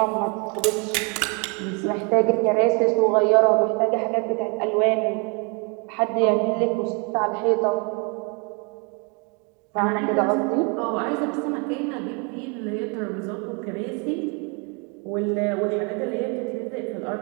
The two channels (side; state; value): left; quieter; 33.7 dB